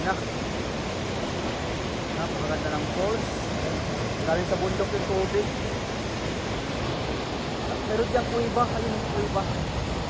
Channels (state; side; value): identical; both; correlation 1.00